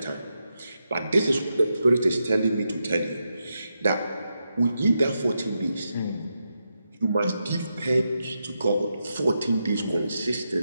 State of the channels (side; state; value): both; inverted; correlation -0.86